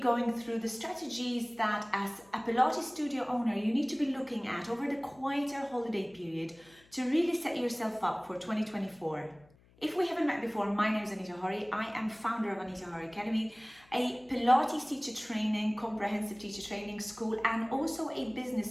through the strategies that as a Pilates studio owner you need to be looking at over the quieter holiday period to really set yourself up for 2024. If we haven't met before, my name is Anita Horry. I am founder of Anita Horry Academy, a Pilates teacher training, comprehensive teacher training school, and also a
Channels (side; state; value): left; noise; hum, 29 dB below the sound